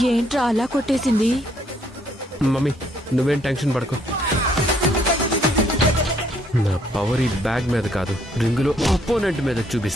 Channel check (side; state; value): both; normal; correlation 0.68